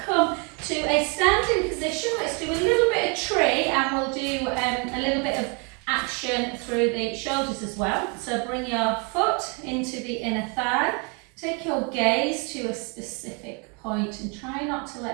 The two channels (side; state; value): left; quieter; 33.8 dB